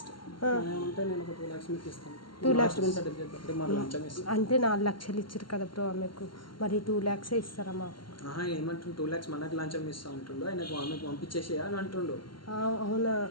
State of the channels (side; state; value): right; late; 0.72 ms